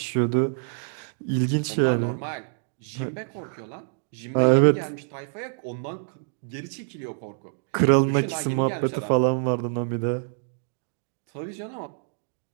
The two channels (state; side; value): silent; left; digital silence